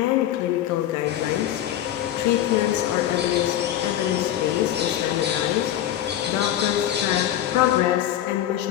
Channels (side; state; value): right; quieter; 12.0 dB